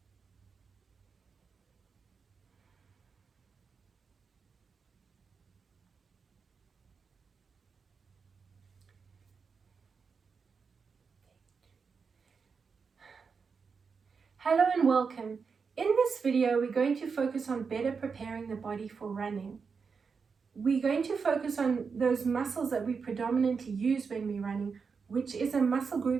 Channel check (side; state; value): left; quieter; 5.5 dB